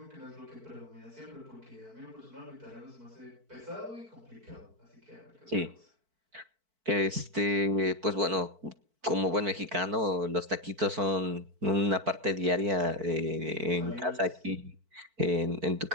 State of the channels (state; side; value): late; left; 4.5 ms